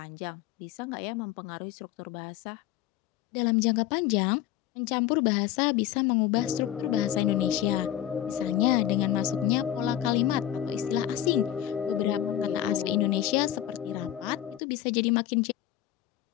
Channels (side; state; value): right; quieter; 12.1 dB